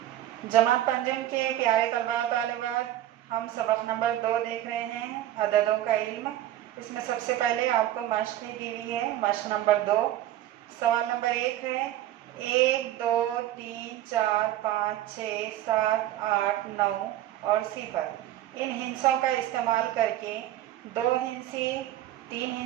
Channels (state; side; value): quieter; left; 13.3 dB